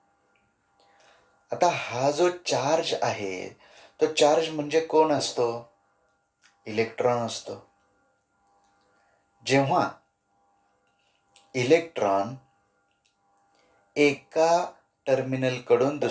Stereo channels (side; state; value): both; identical; correlation 1.00